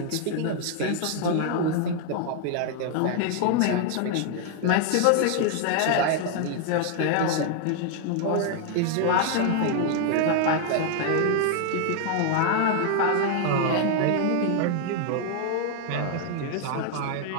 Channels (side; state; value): both; different; correlation 0.00